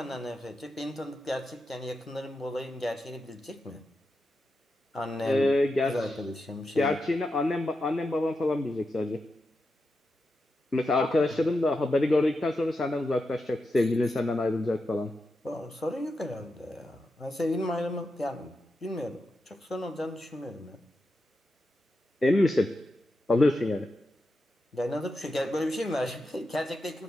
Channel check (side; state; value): both; normal; correlation 0.88